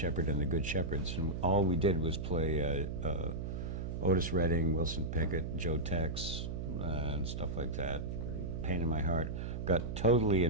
and the Good Shepherds. And all we did was play Otis Redding, Wilson Pickett, Joe Tex, and stuff like that. Pain in my heart. Got totally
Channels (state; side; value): noise; right; hum, 4 dB below the sound